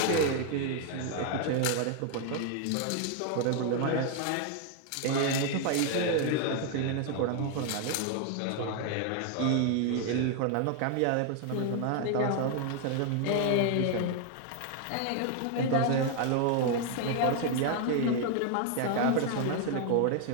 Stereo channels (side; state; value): both; different; correlation 0.00